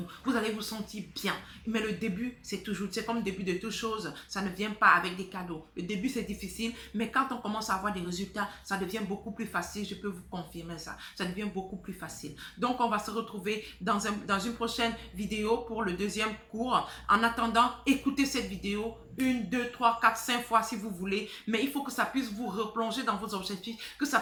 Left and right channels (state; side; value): identical; both; correlation 1.00